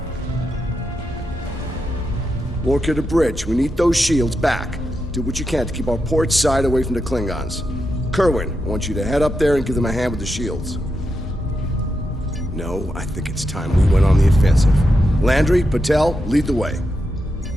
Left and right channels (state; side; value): normal; both; correlation 0.86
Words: Lorca to bridge. We need those shields back. Do what you can to keep our port side away from the Klingons. Kerwin, I want you to head up there and give them a hand with the shields. No, I think it's time we went on the offensive. Landry, Patel, lead the way.